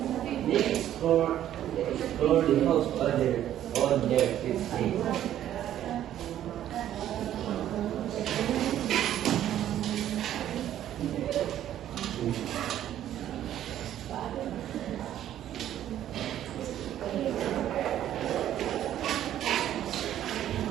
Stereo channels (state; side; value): quieter; left; 11.6 dB